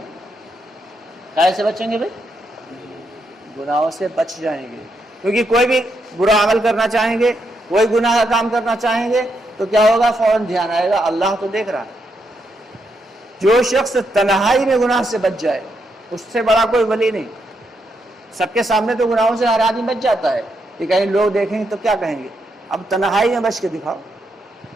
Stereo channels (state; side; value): normal; both; correlation 0.80